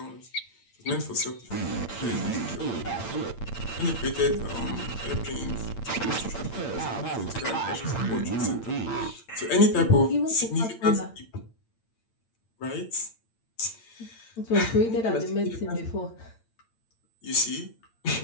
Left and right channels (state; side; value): late; right; 8.8 ms